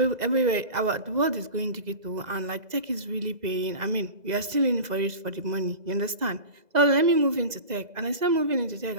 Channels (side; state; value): left; late; 2.0 ms